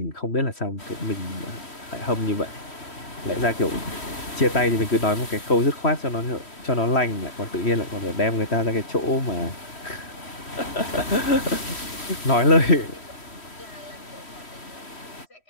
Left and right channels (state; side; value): late; right; 3.1 ms